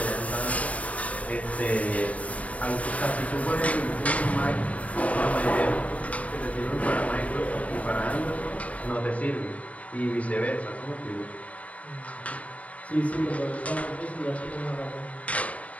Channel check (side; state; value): right; late; 0.068 ms